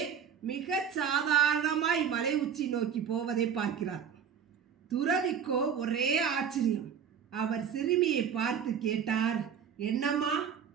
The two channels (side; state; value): left; quieter; 7.7 dB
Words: மிக சாதாரணமாய் மலை உச்சி நோக்கி போவதை பார்க்கிறார். துறவிக்கோ ஒரே ஆச்சரியம். அவர் சிறுமியை பார்த்து கேட்டார், என்னம்மா,